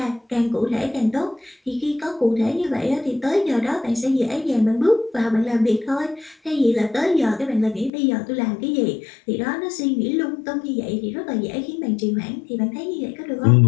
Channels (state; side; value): drops out; right; at 7.9 s